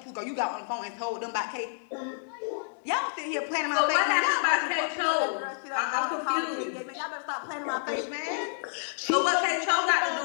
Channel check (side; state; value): right; silent; digital silence